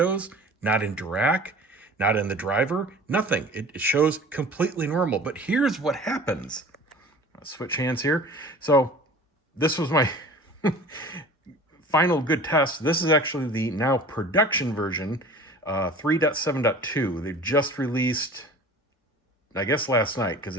not in Dirac, not in the driver, nothing. It shows completely normal. But here's what happens. I'll switch hands here. So this was my final good test. This is actually the now production version, 3.7.2. They've just released, I guess last night, because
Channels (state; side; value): normal; both; correlation 0.42